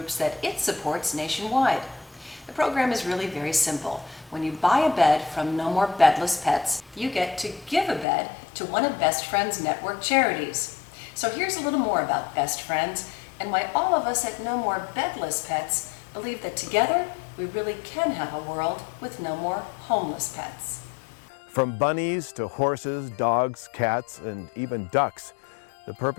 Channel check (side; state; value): right; drops out; at 8.1 s